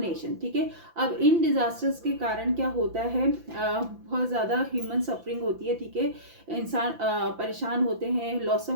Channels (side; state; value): left; late; 5.9 ms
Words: ठीक है, अब इन डिजास्टर्स के कारण क्या होता है? बहुत ज़्यादा ह्यूमन सफरिंग होती है। ठीक है, इंसान परेशान होते हैं, लॉस